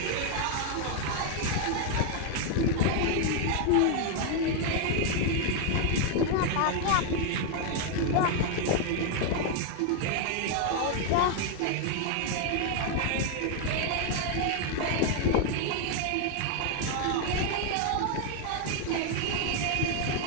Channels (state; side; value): different; both; correlation 0.00